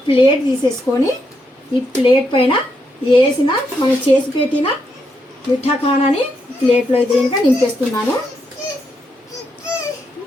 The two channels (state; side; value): normal; both; correlation 0.80